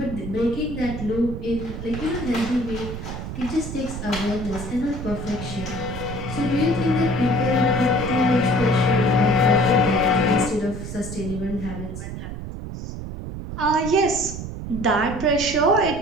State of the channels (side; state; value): right; noise; rumble, 8 dB below the sound